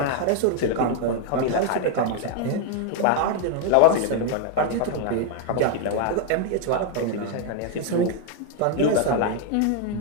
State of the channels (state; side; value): different; both; correlation 0.00